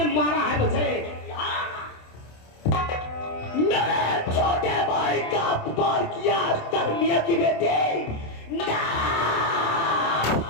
मारा है मुझे। मेरे छोटे भाई का अपमान किया अख्तर मियां की बेटी।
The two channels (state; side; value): late; right; 27 ms